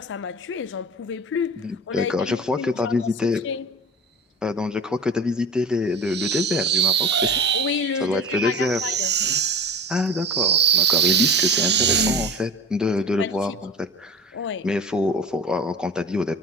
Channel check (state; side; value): normal; both; correlation 0.35